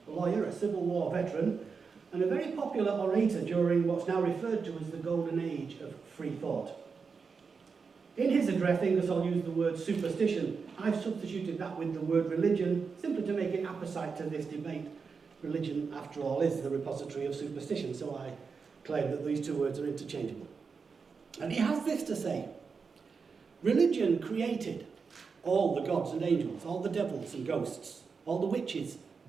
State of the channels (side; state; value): left; quieter; 5.3 dB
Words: a lawyer, a Civil War veteran, and a very popular orator during what's now referred to as the golden age of free thought. In his address, Ingersoll used the word superstition. I've substituted that with the word religion, simply to make it apposite to this debate. Religion, after all, is the repository of superstition, so I claim that these two words are interchangeable. And he has this to say: religion created all the gods and angels, all the devils and ghosts, all the witches,